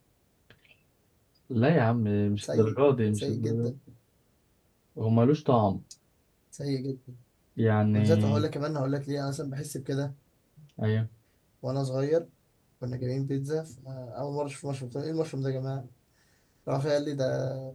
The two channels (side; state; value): both; identical; correlation 1.00